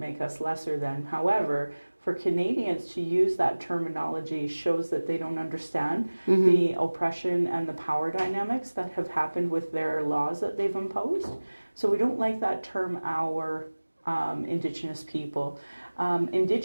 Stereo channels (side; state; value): both; inverted; correlation -1.00